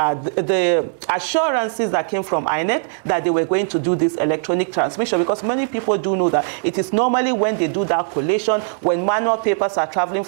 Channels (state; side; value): silent; left; 66 dB below the other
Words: assurances that came from INEC that they were going to do this electronic transmission, because many people do know that it is normally when they do that collation, when manual papers are traveling